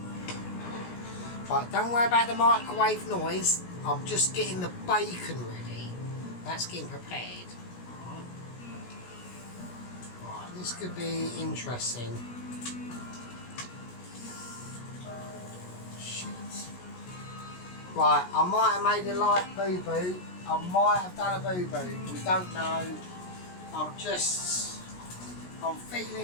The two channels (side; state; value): right; late; 17 ms